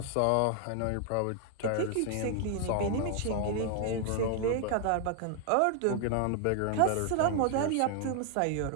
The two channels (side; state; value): both; different; correlation 0.00